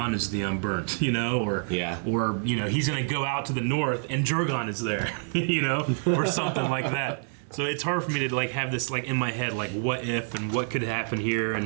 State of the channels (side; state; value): left; silent; 60 dB below the other